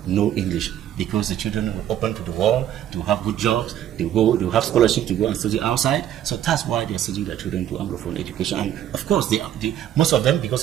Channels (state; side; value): quieter; left; 11.2 dB